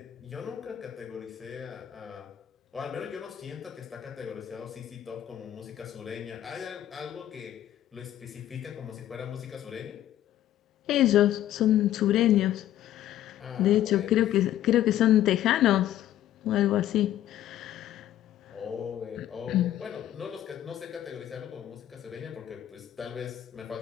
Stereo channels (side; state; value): right; quieter; 12.3 dB